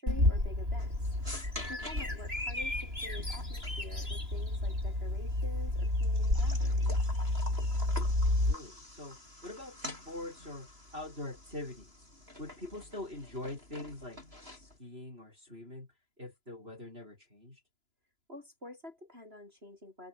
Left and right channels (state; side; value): late; left; 2.9 ms